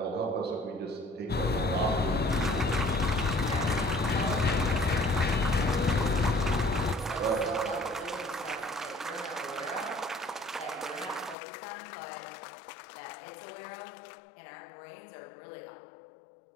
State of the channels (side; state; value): right; drops out; at 11.4 s